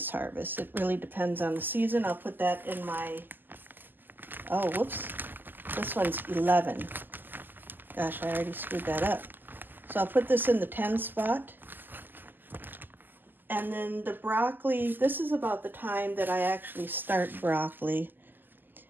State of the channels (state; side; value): late; left; 0.090 ms